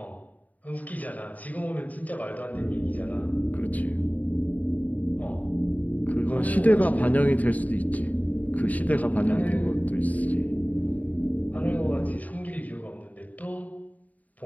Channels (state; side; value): late; right; 0.075 ms